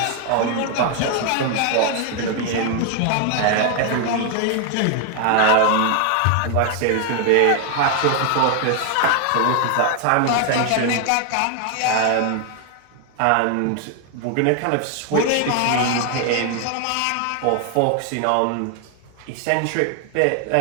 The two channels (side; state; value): both; different; correlation 0.00